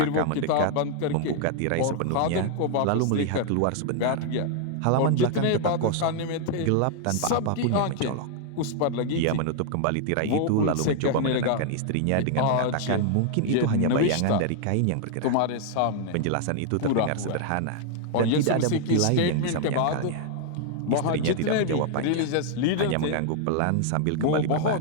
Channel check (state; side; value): different; both; correlation 0.00